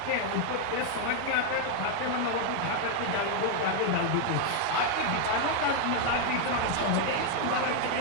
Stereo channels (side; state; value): both; different; correlation 0.00